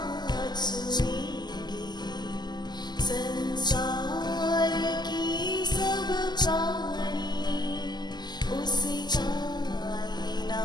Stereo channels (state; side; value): late; right; 0.21 ms